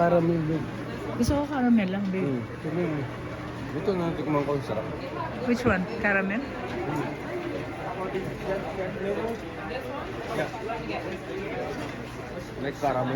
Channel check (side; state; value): both; identical; correlation 1.00